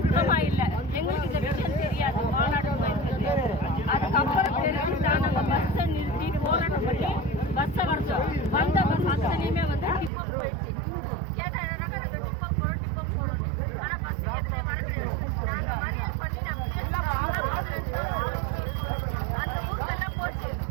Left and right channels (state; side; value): drops out; left; at 10.1 s